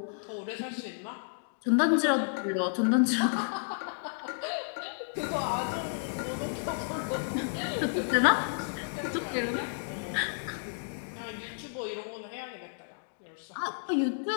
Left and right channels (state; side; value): silent; right; digital silence